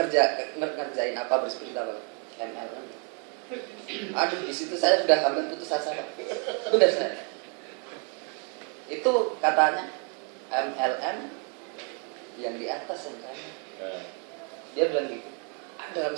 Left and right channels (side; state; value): left; quieter; 38.2 dB